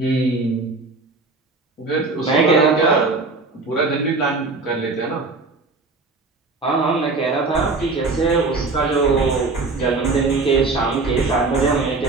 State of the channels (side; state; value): left; quieter; 3.7 dB